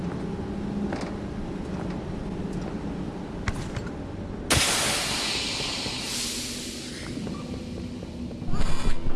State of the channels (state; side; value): identical; both; correlation 1.00